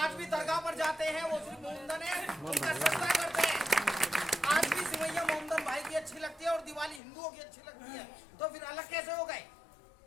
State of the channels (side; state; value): right; drops out; at 7.0 s